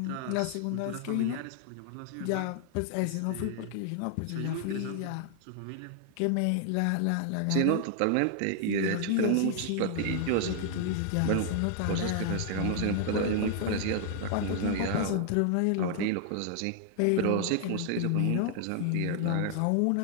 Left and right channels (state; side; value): different; both; correlation 0.00